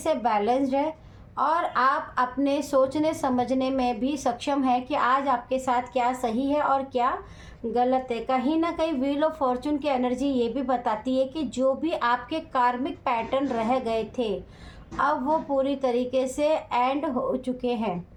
बैलेंस्ड है और आप अपने सोचने समझने में भी सक्षम है कि आज आपके साथ क्या सही है और क्या गलत है। कहीं ना कहीं व्हील ऑफ फॉर्चून की एनर्जी ये भी बताती है कि जो भी आपके कार्मिक पैटर्न रह गए थे अब वो पूरी तरीके से एंड हो चुके हैं।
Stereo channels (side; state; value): both; identical; correlation 1.00